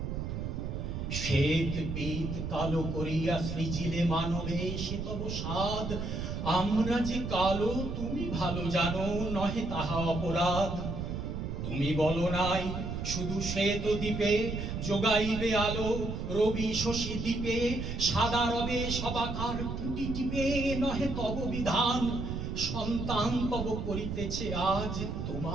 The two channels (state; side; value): noise; right; rumble, 4 dB below the sound